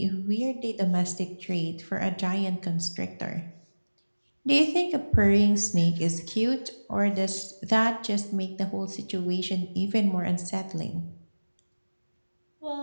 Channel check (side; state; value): both; inverted; correlation -1.00